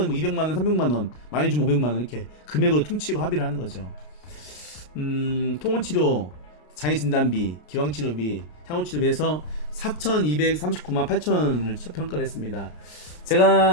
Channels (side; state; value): right; late; 33 ms